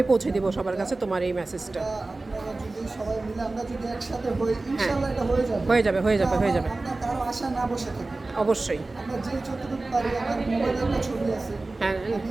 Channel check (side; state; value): left; quieter; 3.2 dB